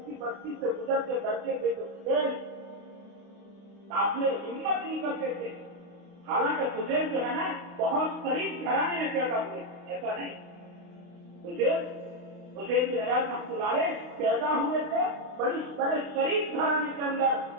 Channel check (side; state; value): left; late; 32 ms